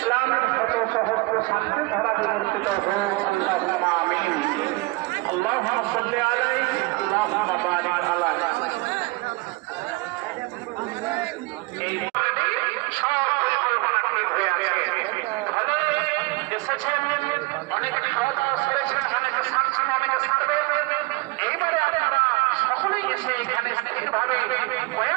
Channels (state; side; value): quieter; left; 24.2 dB